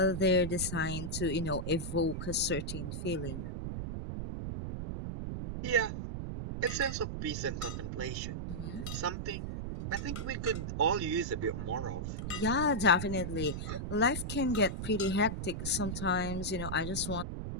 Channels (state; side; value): noise; right; rumble, 4 dB below the sound